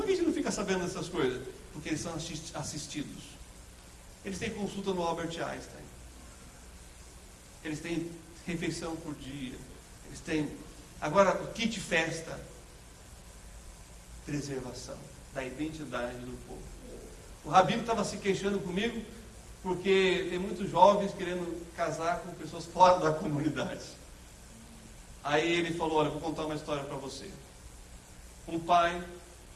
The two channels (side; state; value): both; identical; correlation 1.00